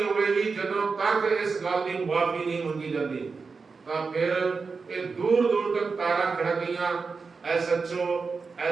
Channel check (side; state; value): left; quieter; 4.7 dB